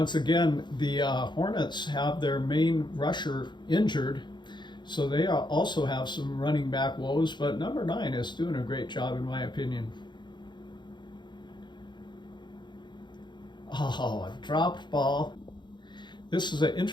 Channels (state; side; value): late; right; 0.22 ms